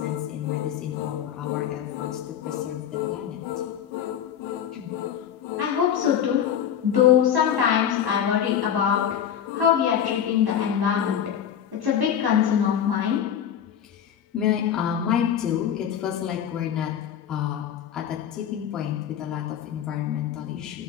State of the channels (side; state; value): right; quieter; 9.2 dB